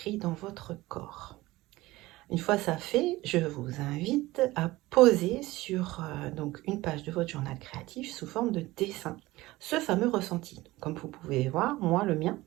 dans votre corps. Une fois ça fait, je vous invite à poser sur donc une page de votre journal créatif sous forme de dessin ce fameux ressenti. Comme vous pouvez voir, moi, le mien,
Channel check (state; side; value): quieter; left; 18.7 dB